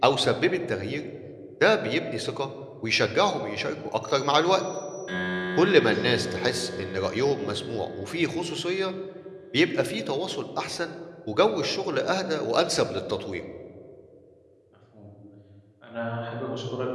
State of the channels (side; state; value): both; identical; correlation 1.00